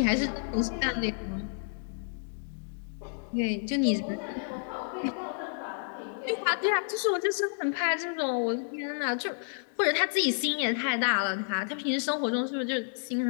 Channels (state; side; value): silent; right; digital silence